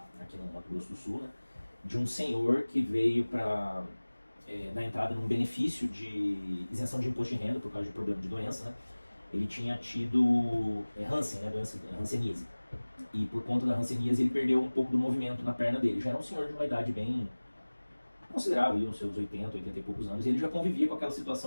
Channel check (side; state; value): both; inverted; correlation -1.00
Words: aqui no Mato Grosso do Sul, né, de um senhor que veio para dar entrada num benefício de isenção de imposto de renda por causa de problema de doença, né? Ele tinha tido Hansen, né, doença hanseníase. E por conta da hanseníase ele perdeu um pouco do movimento na perna dele. Já era um senhor de uma idade bem considerável, uns seus 80 e poucos anos, e ele já convivia com aquela